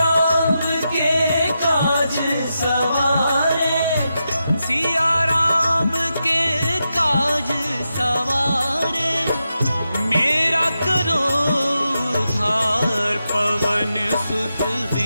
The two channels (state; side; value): inverted; both; correlation -0.88